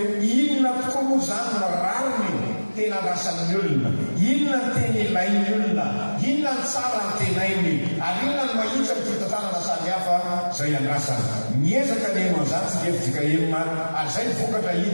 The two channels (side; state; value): both; inverted; correlation -1.00